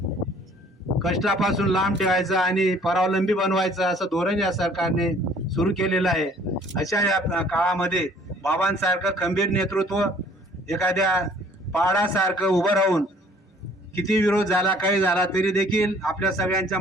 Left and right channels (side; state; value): both; normal; correlation 0.56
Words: कष्टापासून लांब ठेवायचं आणि परावलंबी बनवायचं असं धोरण या सरकारने सुरू केलेलं आहे. अशा या काळामध्ये बाबांसारखं खंबीर नेतृत्व एखाद्या पहाडासारखं उभं राहून किती विरोध झाला, काही झाला तरी देखील आपल्या सगळ्यांच्या